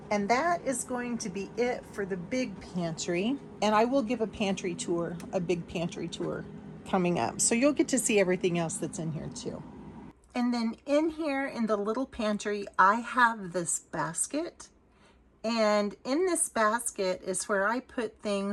And that is going to be it for the big pantry. And I will give a pantry tour, a big pantry tour coming up. So you'll get to see everything else that's in here too. And then in here in the little pantry, I have this basket. And in this basket is where I put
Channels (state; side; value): identical; both; correlation 1.00